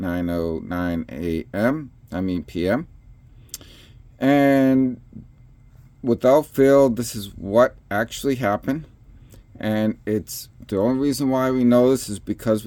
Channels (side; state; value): both; identical; correlation 1.00